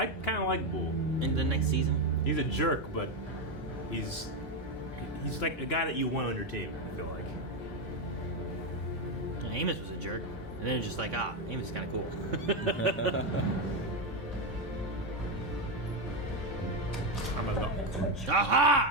kind of like Bull. in the next season? He's a jerk, but he's like a guy that you want on your team, I feel like. Amos was a jerk. And then it's just like, Amos is kind of cool. I'm a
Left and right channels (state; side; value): normal; both; correlation 0.08